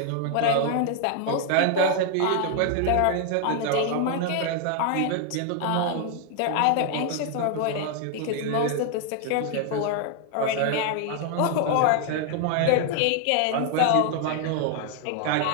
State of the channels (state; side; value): different; both; correlation 0.00